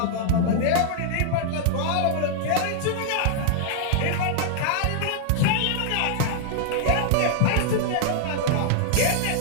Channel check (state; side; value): different; both; correlation -0.01